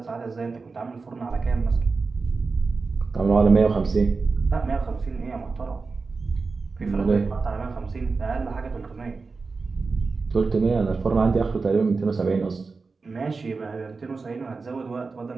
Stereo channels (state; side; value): quieter; left; 4.3 dB